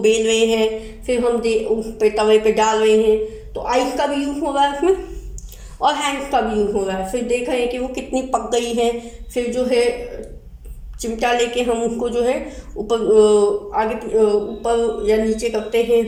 रहे हैं, फिर हम उस पे तवे पे डाल रहे हैं, तो आइस का भी यूज़ हो रहा है उसमें और हैंड्स का भी यूज़ हो रहा है। फिर देख रहे हैं कि वो कितनी पक गई है, फिर जो है चिमटा लेके हम उसको जो है ऊपर आगे ऊपर या नीचे करते हैं।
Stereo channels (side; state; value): both; identical; correlation 1.00